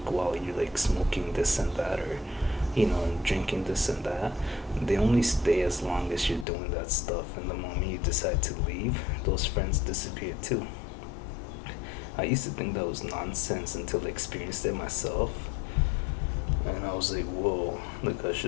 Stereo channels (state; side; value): drops out; right; at 6.5 s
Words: while you're like smoking this and that, or and drinking this and that, they only stay as long as you're doing that stuff. And the moment you decide to leave, those friends disappear too. I used to think that was nonsense until I experienced it myself. And I was like, whoa, like I